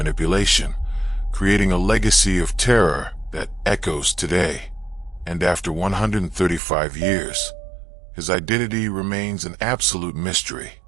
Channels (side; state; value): left; drops out; at 6.6 s